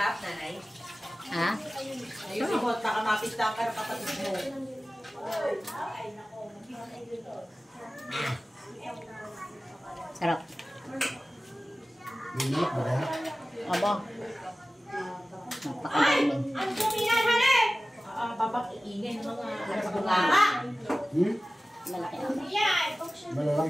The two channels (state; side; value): normal; both; correlation 0.96